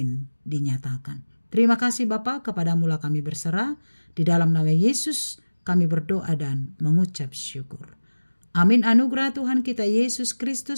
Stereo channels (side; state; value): both; inverted; correlation -1.00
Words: dinyatakan. Terima kasih Bapa, kepadamu-lah kami berserah. Di dalam nama Yesus kami berdoa dan mengucap syukur. Amin. Anugerah Tuhan kita Yesus